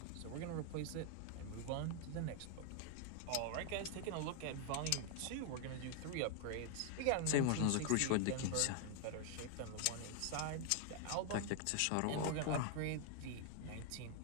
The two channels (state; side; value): different; both; correlation 0.00